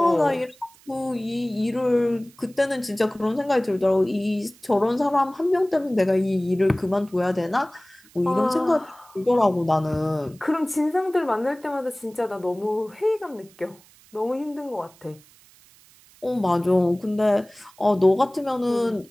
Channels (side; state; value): right; noise; hiss, 27 dB below the sound